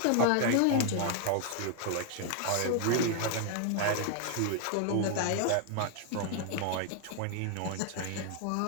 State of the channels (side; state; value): both; different; correlation 0.00